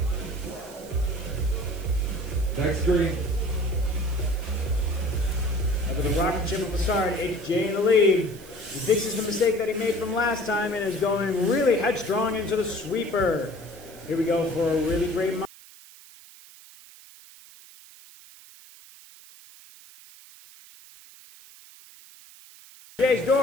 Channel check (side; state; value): right; noise; hiss, 21 dB below the sound